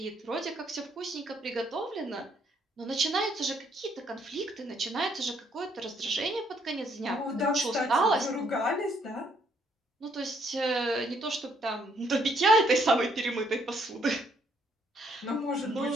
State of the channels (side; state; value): both; normal; correlation 0.69